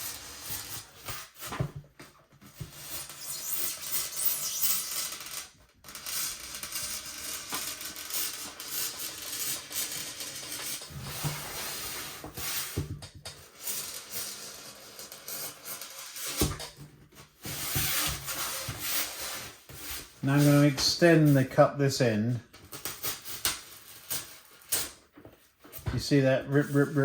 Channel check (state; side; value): identical; both; correlation 1.00